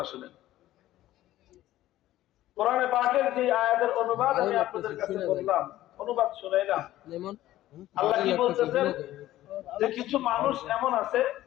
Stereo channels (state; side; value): quieter; right; 14.6 dB